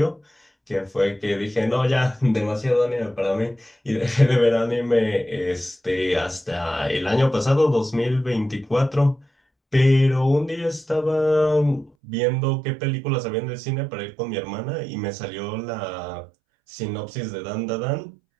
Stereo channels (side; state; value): left; drops out; at 11.9 s